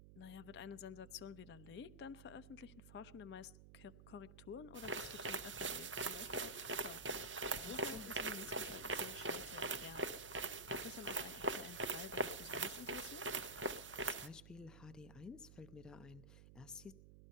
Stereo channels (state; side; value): noise; right; hum, 16 dB below the sound